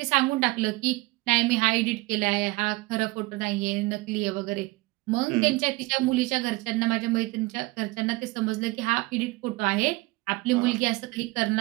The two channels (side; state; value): left; quieter; 22.5 dB